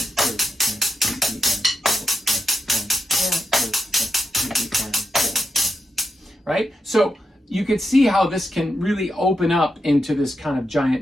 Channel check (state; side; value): normal; both; correlation 0.85